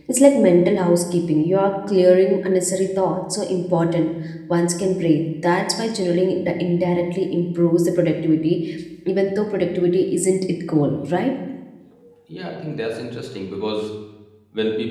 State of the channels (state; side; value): identical; both; correlation 1.00